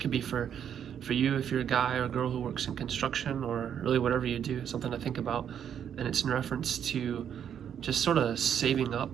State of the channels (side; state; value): left; quieter; 8.8 dB